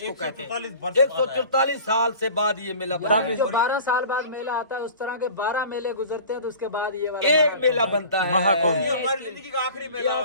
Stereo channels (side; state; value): both; inverted; correlation -0.42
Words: कहते हैं। 144 साल से बाद ये मेला बना है। 12 साल बाद मेला आता है, उस तरह के 12 मेले गुजरते हैं तो उसके बाद ये वाला एक मेला बनता है महाकुंभ। ये हमारी जिंदगी का आखिरी ये मेला।